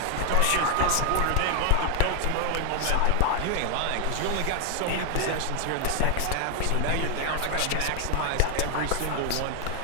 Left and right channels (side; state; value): both; different; correlation 0.00